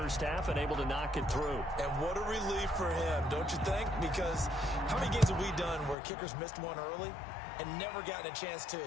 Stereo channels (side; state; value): right; drops out; at 6.0 s